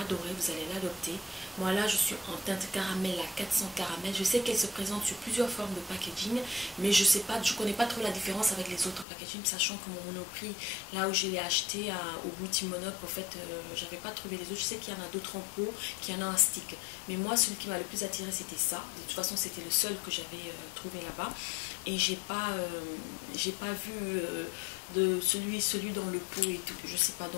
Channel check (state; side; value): drops out; right; at 9.1 s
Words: vous allez l'adopter. Moi là, je suis en teinte caramel, la 400 caramel. Je sais qu'elle se présente sur plusieurs formes de packaging, mais je connais pas trop la différence avec les autres packaging, sachant que mon Monoprix, là où je l'ai acheté au boutique Monop, en fait, j'avais pas trouvé les autres. Je sais qu'il y en a d'autres en pot, qu'il y en a un stick. Mais moi, celui qui m'a le plus attiré, c'était ça. De toute façon, c'était le seul que j'avais trouvé là-bas. Et j'ai pas vu de celui dans le pot et tout. Je sais pas,